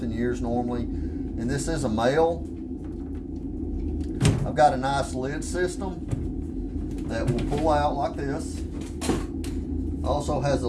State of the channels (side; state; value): both; identical; correlation 1.00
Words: years normally. And this is a male. I've got a nice lid system that will pull out like this. Also has a